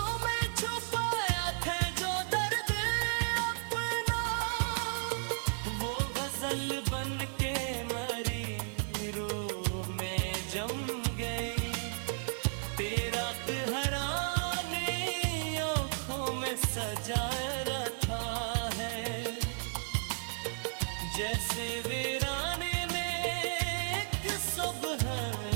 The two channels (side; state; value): left; silent; digital silence